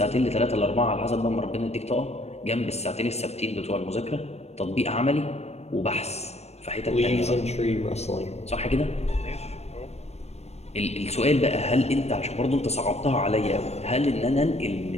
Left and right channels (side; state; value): right; late; 0.31 ms